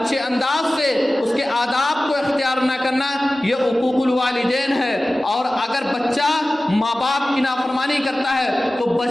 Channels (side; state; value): both; normal; correlation 0.96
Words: انداز سے اس کے آداب کو اختیار نہ کرنا، یہ حقوق الوالدین ہے۔ اور اگر بچہ ماں باپ کی نافرمانی کرتا ہے تو